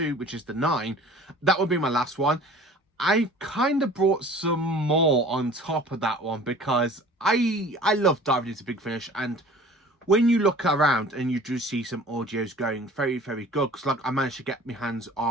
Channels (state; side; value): normal; both; correlation 0.46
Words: which is the 9, that would be my last one. I kind of brought some more on top of that one because I love diving into Big Finish, and when you look around and you do see some audios going very, very good, because like I managed to get my hands